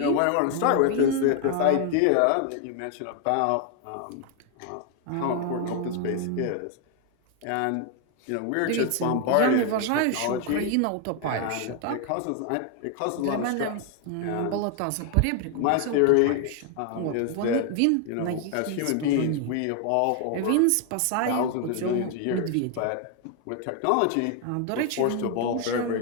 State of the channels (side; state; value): both; different; correlation 0.01